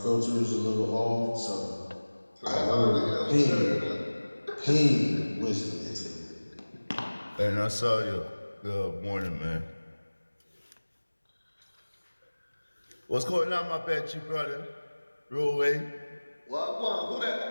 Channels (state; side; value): inverted; both; correlation -1.00